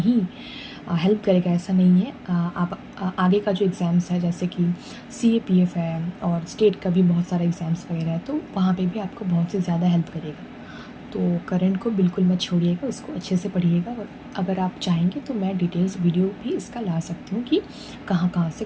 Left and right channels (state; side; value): identical; both; correlation 1.00